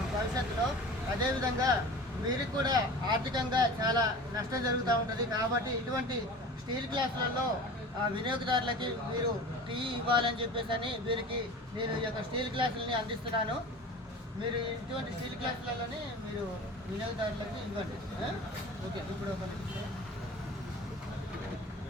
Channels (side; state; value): both; normal; correlation 0.37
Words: భవిష్యత్తులో. అదేవిధంగా వీరికి కూడా ఆర్థికంగా చాలా నష్టం జరుగుతూ ఉంటుంది. కాబట్టి ఇటువంటి స్టీల్ గ్లాసులలో వినియోగదారులకి మీరు టీ ఇవ్వాలని చెప్పేసి వీరికి నేను ఈ యొక్క స్టీల్ గ్లాసులని అందిస్తున్నాను. మీరు ఇటువంటి స్టీల్ గ్లాసులలోనే మీరు వినియోగదారులకు ఇవ్వండి. ఓకే, ఇప్పుడు ఒక